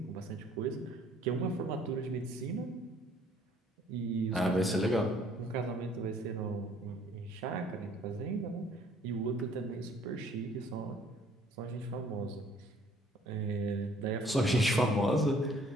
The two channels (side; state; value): both; normal; correlation 0.59